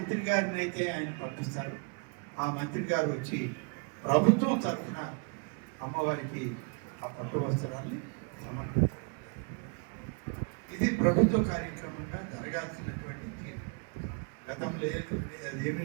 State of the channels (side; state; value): left; quieter; 36.8 dB